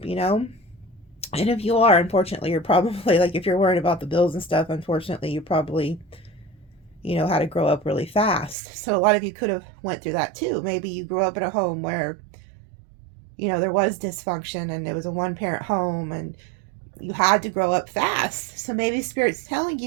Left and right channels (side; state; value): left; drops out; at 8.6 s